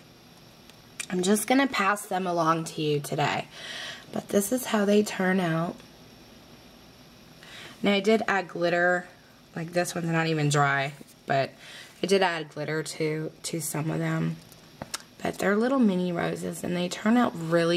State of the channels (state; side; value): identical; both; correlation 1.00